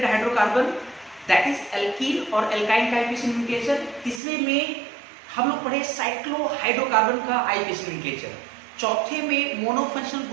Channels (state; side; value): drops out; left; at 4.2 s